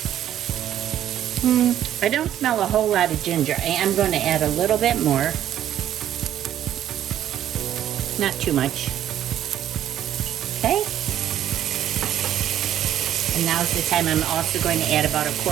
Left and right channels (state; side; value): quieter; left; 11.2 dB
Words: I don't smell a whole lot of ginger. I am going to add a little bit more. Not too much. Okay. And now's the time I'm also going to add about a